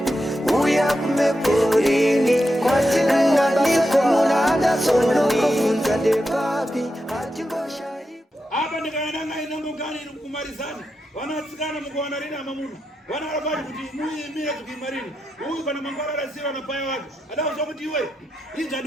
uya kumeporini kwatinanganikomunadasonokofunza depapi hatingoshai apa ndikayananga inongogani kumarizana vanatsikana mukuwana rina mamuna vana varapati kuti muimire tukimarini uyu kana mangwara arasiva napaya wake adauza kuti iwe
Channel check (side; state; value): both; normal; correlation 0.87